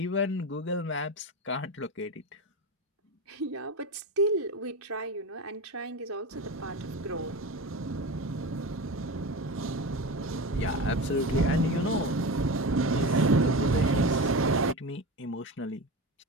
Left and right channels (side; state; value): both; normal; correlation 0.25